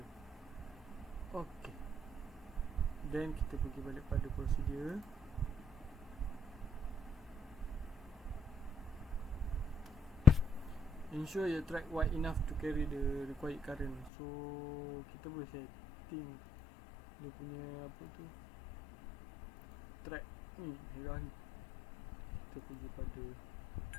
Ok, then kita pergi balik pada prosedur. Ensure your track wide enough to carry the required current. So kita boleh setting dia punya track ni, merah ni. Kita pergi pada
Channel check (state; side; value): drops out; right; at 14.1 s